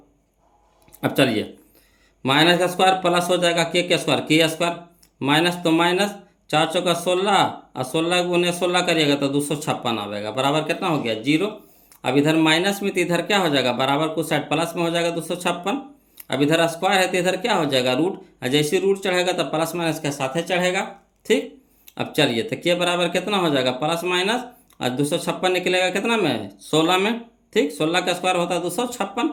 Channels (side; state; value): both; identical; correlation 1.00